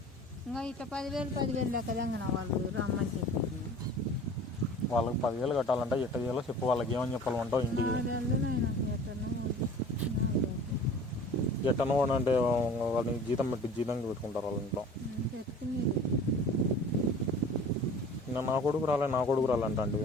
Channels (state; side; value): normal; both; correlation 0.44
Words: ఇంకా ఇట్లా 10,000 లెక్కదంగా వాళ్ళు రమ్మని చెప్పి వాళ్ళకి 10,000 కట్టాలంటే ఎట్ట చేయాలో చెప్పు. వాళ్ళకి ఏమని చెప్పాలంటావు ఇంటికి ఎట్టనో అంటే వాళ్ళని జీతం పెట్టుకుంటారు వాళ్ళ ఇంట్లో. నా కొడుకు రాలేంట అంటే